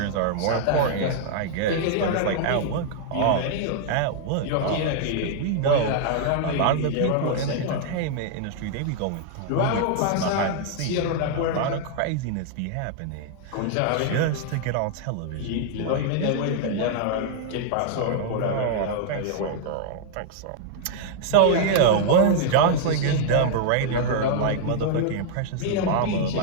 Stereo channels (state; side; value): different; both; correlation -0.01